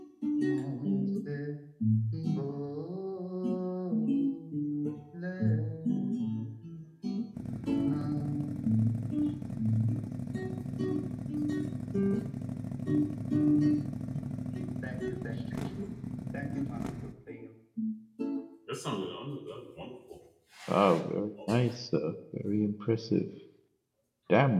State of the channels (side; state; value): both; identical; correlation 1.00